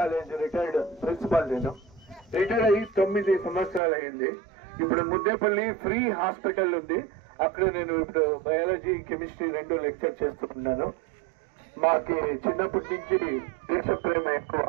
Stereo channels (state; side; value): drops out; left; at 3.8 s